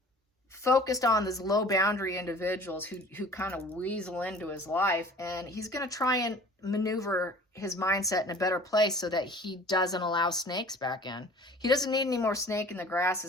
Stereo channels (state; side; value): normal; both; correlation 0.46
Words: focused on these low boundary individuals who kind of weasel into his life, and he's going to try and maneuver his mindset in a better place so that he doesn't allow snakes back in. He doesn't need any more snake in the